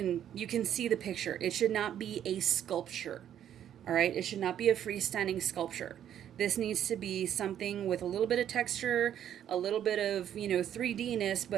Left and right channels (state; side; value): quieter; left; 10.2 dB